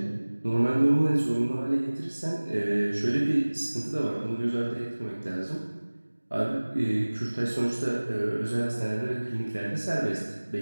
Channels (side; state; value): both; inverted; correlation -1.00